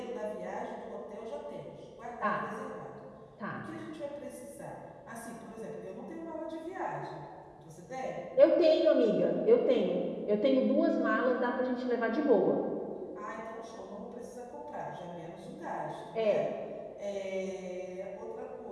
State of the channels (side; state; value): both; identical; correlation 1.00